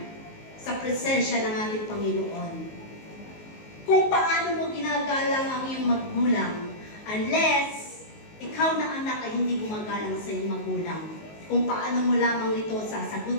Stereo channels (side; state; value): right; late; 19 ms